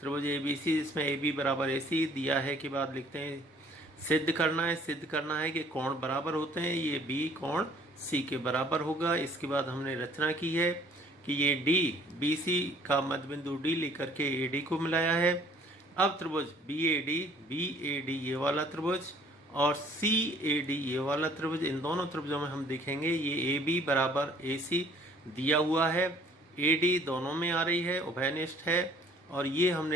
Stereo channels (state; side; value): normal; both; correlation 0.57